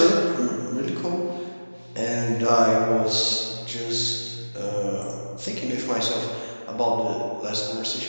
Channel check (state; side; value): inverted; both; correlation -1.00